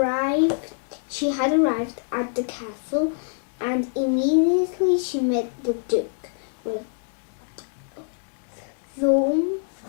arrived at the castle, and immediately she met the duke,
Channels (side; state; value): right; silent; 62 dB below the other